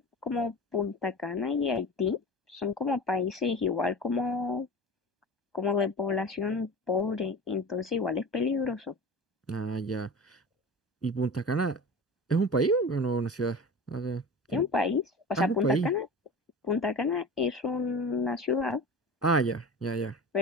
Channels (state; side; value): normal; both; correlation 0.33